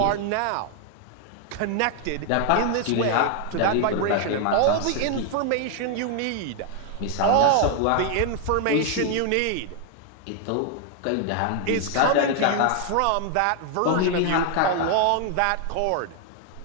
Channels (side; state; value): both; different; correlation 0.00